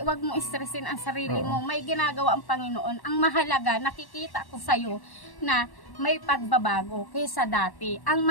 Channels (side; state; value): right; late; 1.1 ms